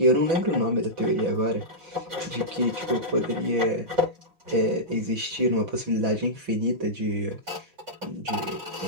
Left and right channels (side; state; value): left; late; 6.0 ms